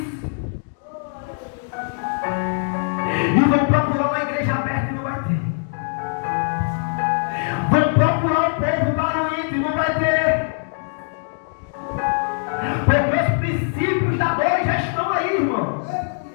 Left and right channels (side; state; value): right; silent; 64 dB below the other